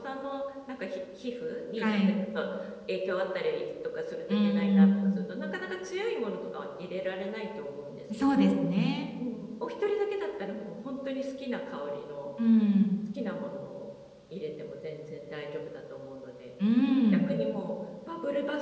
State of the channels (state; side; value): identical; both; correlation 1.00